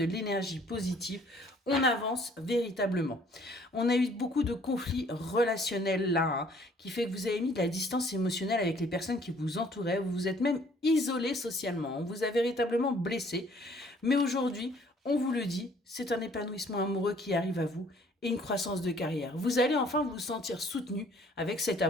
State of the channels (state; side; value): normal; both; correlation 0.59